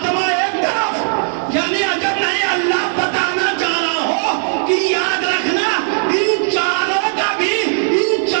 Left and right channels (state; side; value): silent; left; 61 dB below the other